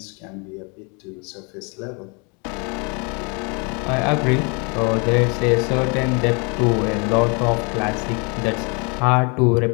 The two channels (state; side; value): quieter; right; 33.1 dB